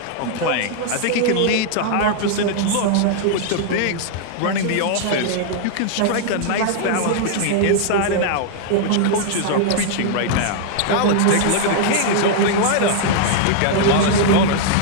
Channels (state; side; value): different; both; correlation -0.01